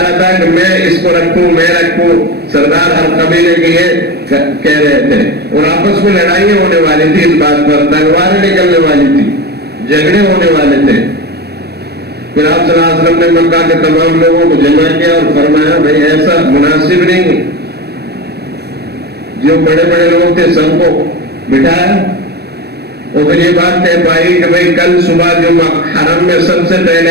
رہا تھا کہ میں اس کو رکھوں، میں رکھوں۔ سردار ہر قبیلے کے یہ کہہ رہے تھے، اور آپس میں لڑائیاں ہونے والی تھی اس بات پر، تلواریں نکلنے والی تھی، جھگڑے ہونے والے تھے۔ پھر آپ صلی اللہ علیہ وسلم نے مکہ کے تمام لوگوں کو جمع کیا اور فرمایا، بھائی ایسا مناسب نہیں۔ جو بڑے بڑے لوگ تھے سب کو بٹھایا، اور پھر یہ بات طے پائی کہ بھائی کل صبح جو حرم میں سب سے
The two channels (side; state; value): left; late; 0.47 ms